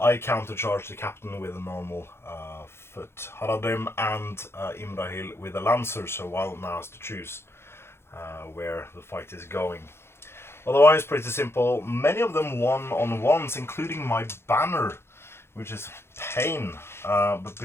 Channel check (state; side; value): late; right; 0.12 ms